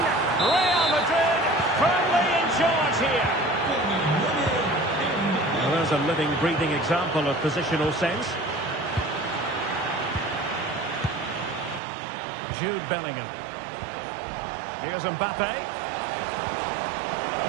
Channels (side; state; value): left; drops out; at 11.8 s